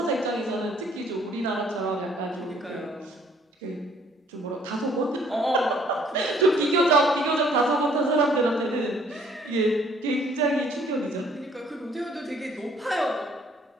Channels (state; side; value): normal; both; correlation 0.60